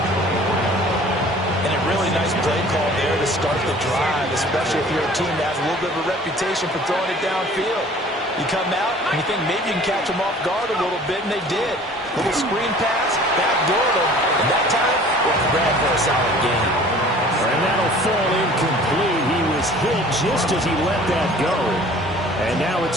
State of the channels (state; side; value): normal; both; correlation 0.49